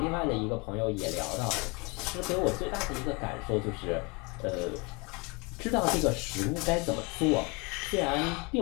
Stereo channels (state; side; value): quieter; right; 28.4 dB